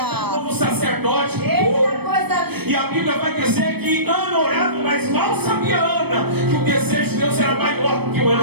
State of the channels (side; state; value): left; late; 0.97 ms